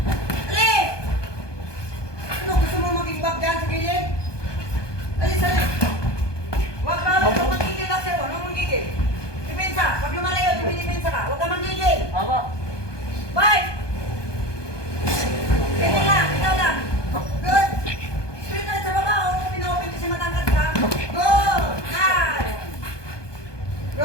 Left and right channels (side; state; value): right; late; 1.2 ms